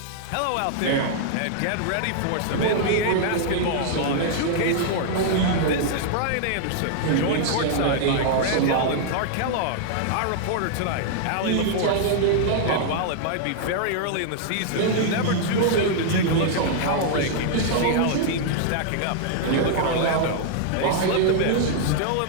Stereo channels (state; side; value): different; both; correlation -0.01